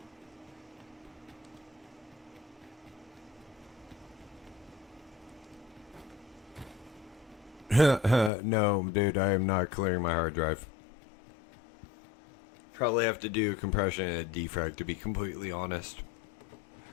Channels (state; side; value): drops out; right; at 8.3 s